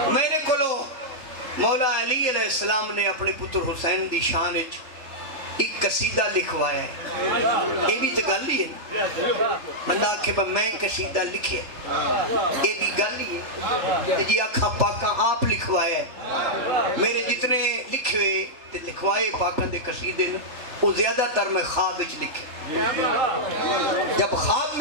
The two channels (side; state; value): left; late; 3.7 ms